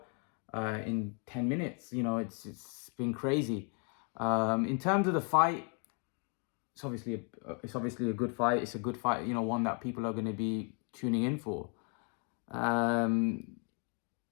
in 10 minutes. It's been crazy. In terms of the fight, it's obviously a good fight. It's a good fight. One that people are going to be tuning in for. Um,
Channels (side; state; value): right; quieter; 38.9 dB